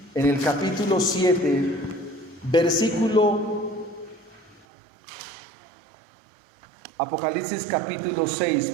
en el capítulo 7, Apocalipsis capítulo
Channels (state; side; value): drops out; left; at 4.7 s